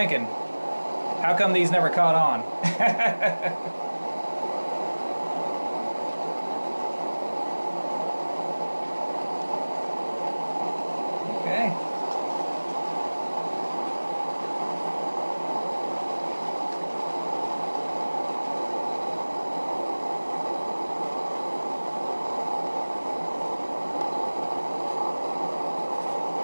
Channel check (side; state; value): both; inverted; correlation -1.00